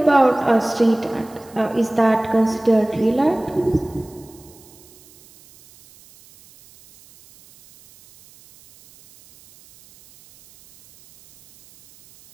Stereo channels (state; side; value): noise; right; hiss, 26 dB below the sound